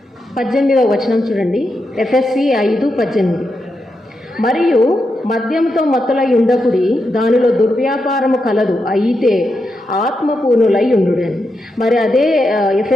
18వ వచనం చూడండి. ఎఫెసీ 5:18. మరియు మద్యంతో మత్తులై ఉండకుడి, దానిలో దుర్వ్యాపారము కలదు, అయితే ఆత్మపూర్ణులై ఉండుడని. మరి అదే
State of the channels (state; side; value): normal; both; correlation 0.85